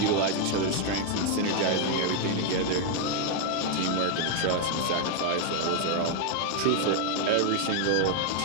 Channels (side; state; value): both; different; correlation 0.00